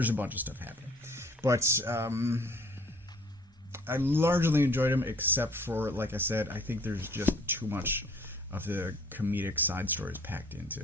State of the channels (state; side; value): normal; both; correlation 0.55